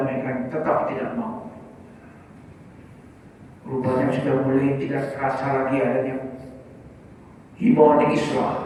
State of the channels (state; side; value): identical; both; correlation 1.00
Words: tetap tidak mau. Rupanya sudah mulai tidak terasa lagi adanya himbauan